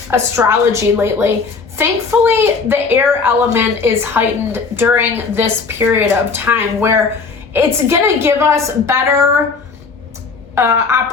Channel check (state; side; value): quieter; right; 4.7 dB